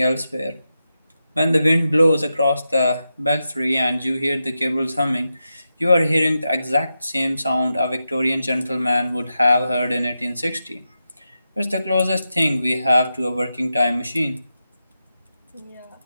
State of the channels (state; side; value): inverted; both; correlation -0.89